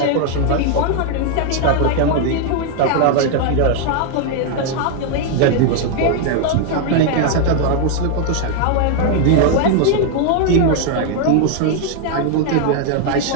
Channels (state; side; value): different; both; correlation 0.00